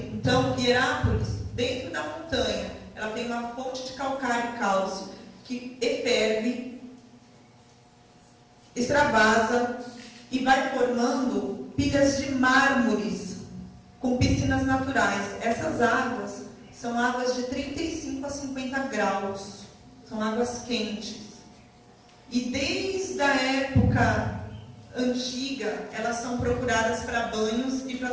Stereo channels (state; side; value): identical; both; correlation 1.00